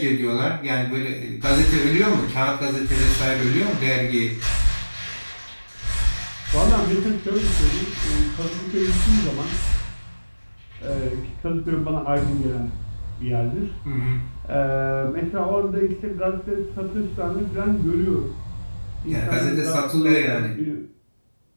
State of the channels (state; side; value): inverted; both; correlation -1.00